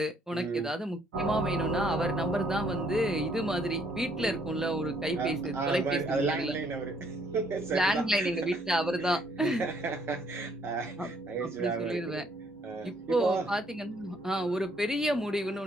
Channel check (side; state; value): both; normal; correlation 0.66